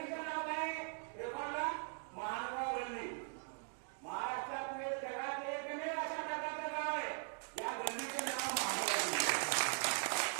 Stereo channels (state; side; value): silent; left; 51 dB below the other